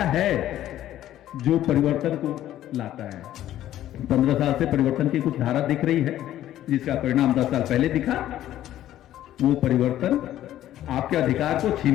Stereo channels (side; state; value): right; quieter; 12.8 dB